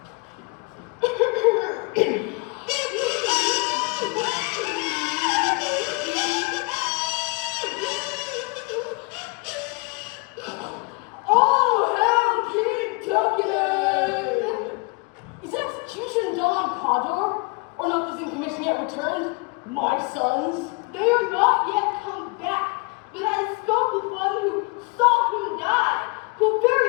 Oh, hell, King Duncan! Is execution done on Cawdor, or not this in commission yet returned? My sons? They are not yet come back, but I spoke with one who saw him die, who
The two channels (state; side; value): quieter; right; 30.0 dB